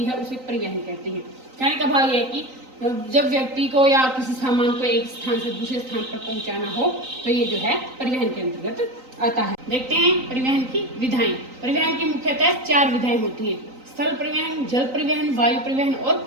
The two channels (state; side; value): late; left; 3.9 ms